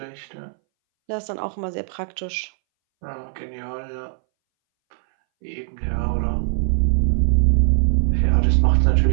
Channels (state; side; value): silent; left; 63 dB below the other